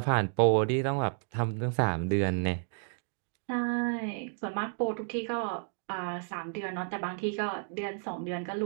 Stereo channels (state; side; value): silent; left; 57 dB below the other